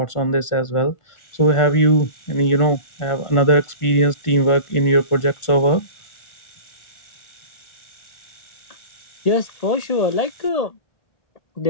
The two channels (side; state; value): right; late; 1.4 ms